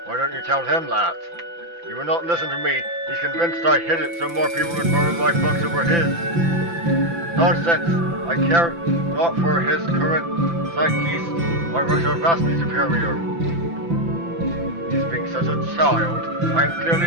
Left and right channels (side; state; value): left; late; 5.9 ms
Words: Why don't you tell him that? He will not listen to me. He's convinced I hid it so more people would borrow my books over his. Nonsense. I care not for his current zeitgeist. My works are vastly superior. He's being such a child. I am